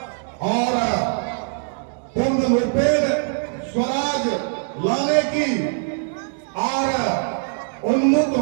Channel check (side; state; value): left; silent; digital silence